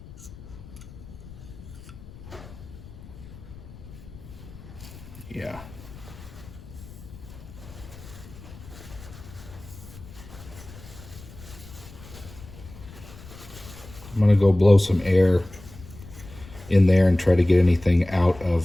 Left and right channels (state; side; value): noise; left; rumble, 17 dB below the sound